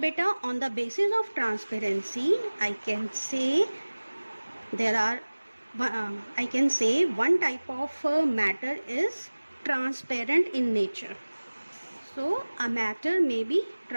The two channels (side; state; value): both; inverted; correlation -1.00